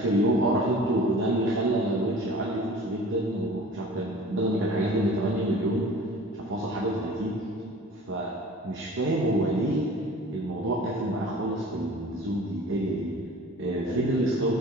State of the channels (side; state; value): both; normal; correlation 0.43